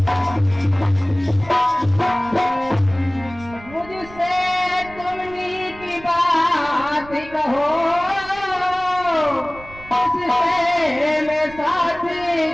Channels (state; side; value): noise; right; rumble, 19 dB below the sound